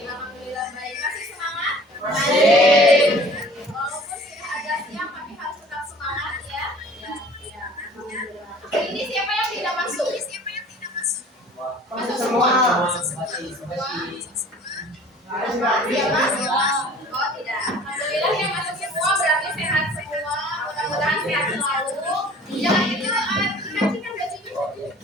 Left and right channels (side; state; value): both; normal; correlation 0.48